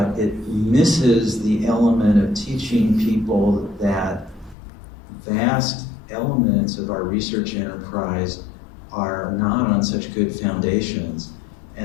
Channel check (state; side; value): drops out; right; at 4.5 s